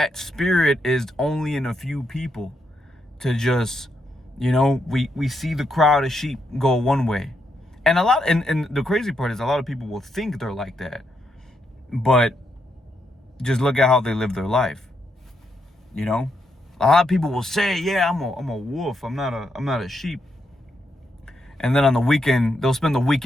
spirit is only in a few people to just, we see the crowd of sheep go one way. And and the crazy part is a lot of people will think they're like that. But just look at how they live their life, you know? A lot of people will say, yeah, I'm a wolf. I'm not a sheep. And then on the weekend, they'll spend the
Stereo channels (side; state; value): both; normal; correlation 0.80